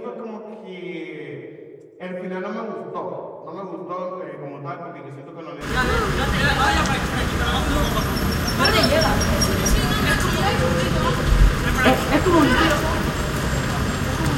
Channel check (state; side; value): identical; both; correlation 1.00